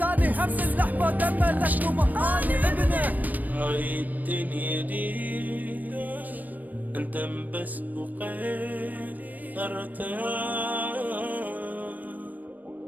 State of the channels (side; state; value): left; late; 0.081 ms